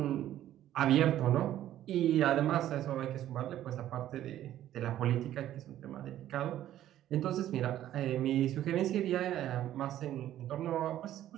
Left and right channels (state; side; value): quieter; left; 12.5 dB